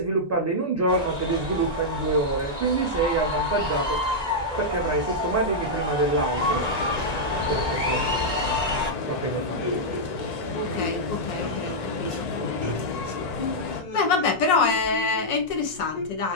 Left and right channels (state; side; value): late; right; 1.9 ms